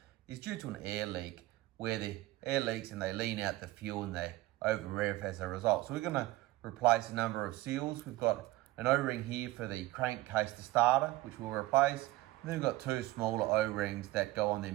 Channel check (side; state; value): left; quieter; 18.0 dB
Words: is due to an air leak, where the air leaks and they lean out the fuel and they over rev as a result. So we're going to replace a number of seals. We've got an O-ring here for the crankcase to starter, which we'll replace. And then we've got two smaller O-rings that go on the